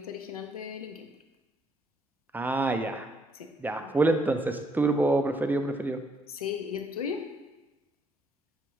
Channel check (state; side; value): normal; both; correlation 0.71